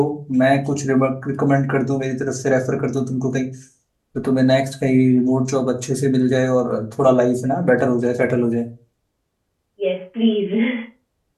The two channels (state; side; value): identical; both; correlation 1.00